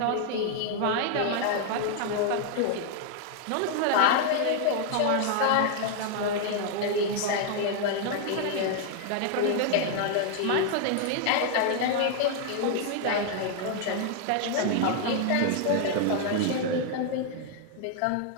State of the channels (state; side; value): different; both; correlation 0.00